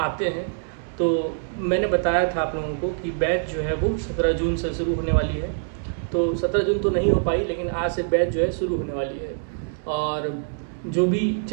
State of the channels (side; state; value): left; silent; digital silence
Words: हैं। तो मैंने बताया था आप लोगों को कि बैच जो है वो 17 जून से शुरू होने वाली है। तो 17 जून तो नहीं हो पाई, लेकिन आज से बैच जो है शुरू होने वाली है। और जो भी,